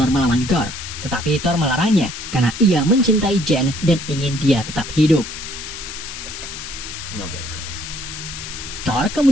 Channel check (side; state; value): left; noise; hiss, 9 dB below the sound